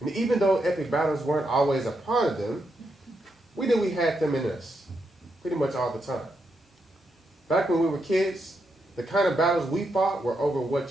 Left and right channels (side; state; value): both; normal; correlation 0.82